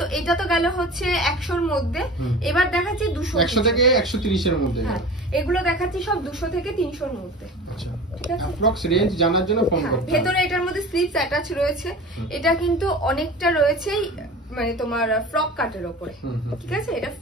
এটা তো গেল হচ্ছে 100 এর মধ্যে, এবার দেখাচ্ছি 200 100 থেকে 130 এর মধ্যে। হ্যাঁ, এগুলো দেখাচ্ছি সব 200 থেকে 300 এর মধ্যে। আচ্ছা, ঠিক আছে? অ্যাপ্রক্স রেঞ্জ জানার জন্য ফোন করতে হবে। ভেতরে এটার মধ্যে স্লিভস অ্যাটাচ রয়েছে। এটা কিন্তু অনেকটা রয়েছে মানে তোমার ফ্রক কাটের উপরে, ঠিক আছে? এটা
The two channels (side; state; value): both; normal; correlation 0.36